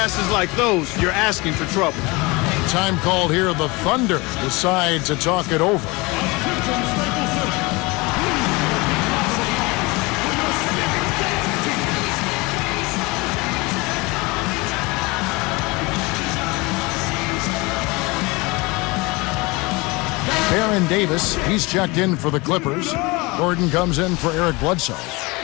like those, you're asking for trouble. Time called here. The Thunder decide to talk it over. Baron Davis, he's checked in for the Clippers. Gordon comes in for Eric Bledsoe.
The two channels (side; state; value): right; quieter; 24.7 dB